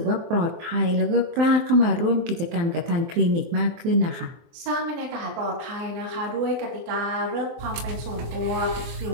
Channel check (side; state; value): left; late; 24 ms